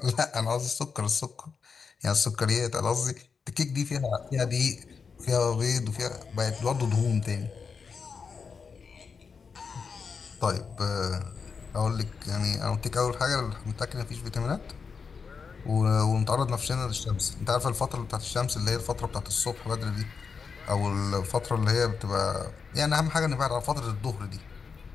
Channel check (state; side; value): quieter; right; 5.5 dB